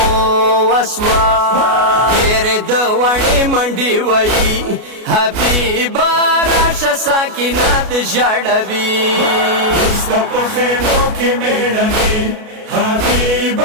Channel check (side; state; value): left; late; 33 ms